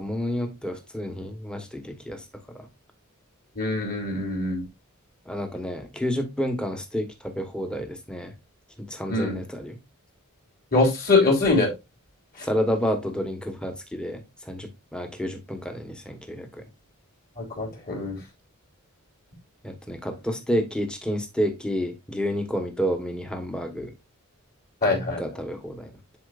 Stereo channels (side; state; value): both; normal; correlation 0.51